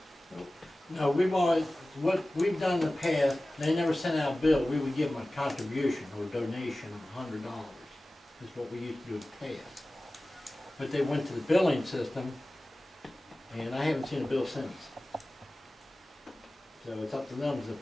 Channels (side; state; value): both; normal; correlation 0.97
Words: no, we've always, what we've done in the past, they never sent out a bill. We would give them a contribution or donation of $100, is what we used to do in the past. But they went to the billing system, and I haven't seen a bill since. So it's up to them to